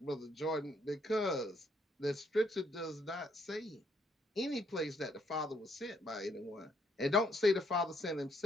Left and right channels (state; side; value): normal; both; correlation 0.70